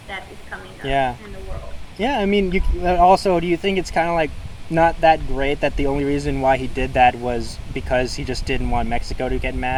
that is coming up yeah. in the world. Yeah, I mean, also, do you think it's kind of like not that great that the only reason why he did that was because he just didn't want Mexico to get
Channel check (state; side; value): identical; both; correlation 1.00